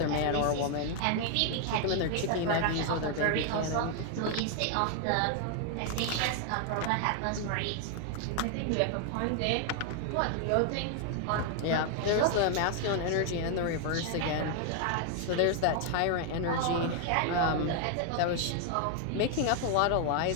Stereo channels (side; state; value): both; different; correlation 0.00